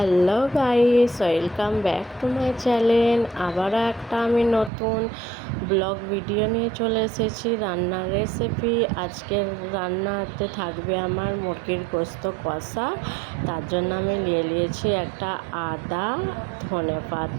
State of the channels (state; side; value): drops out; left; at 4.7 s